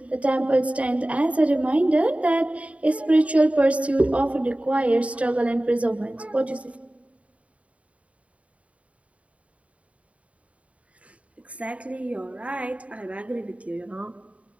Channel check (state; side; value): late; left; 0.065 ms